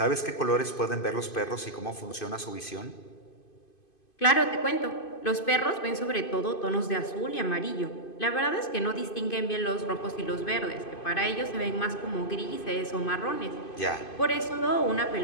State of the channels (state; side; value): late; right; 2.5 ms